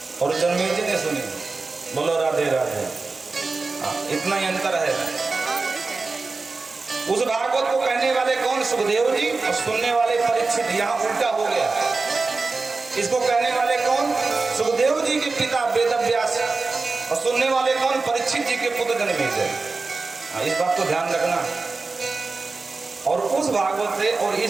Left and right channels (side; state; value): left; quieter; 3.9 dB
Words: और जन्मेजय ने सुनी। बोलो राधे राधे। इतना ही अंतर है। उस भागवत को कहने वाले कौन? सुखदेव जी, और सुनने वाले परीक्षित। यहाँ उल्टा हो गया। इसको कहने वाले कौन? सुखदेव जी के पिता वेदव्यास, और सुनने वाले कौन? परीक्षित जी के पुत्र जन्मेजय। इस बात को ध्यान रखना। और उस भागवत से और